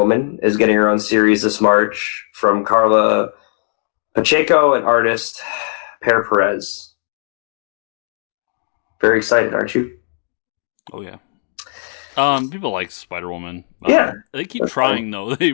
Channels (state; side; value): silent; right; digital silence